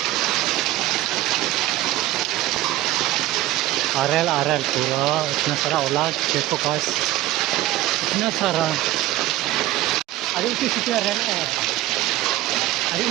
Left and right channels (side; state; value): left; quieter; 15.9 dB